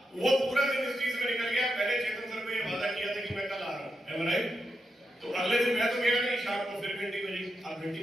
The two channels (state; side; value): normal; both; correlation 0.86